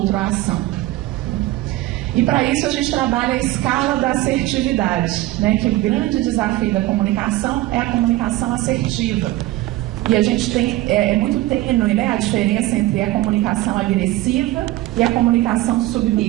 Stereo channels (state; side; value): quieter; left; 17.1 dB